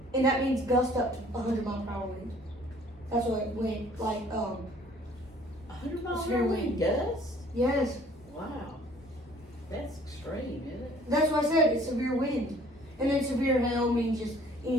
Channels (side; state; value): both; normal; correlation 0.55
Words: And that means gust up to 100 mile per hour wind. That's what wind, like 100 miles Severe per hour wind. gust? yes. Wow. That's extreme, isn't it? That's what I said, it's severe wind. And then severe hail means just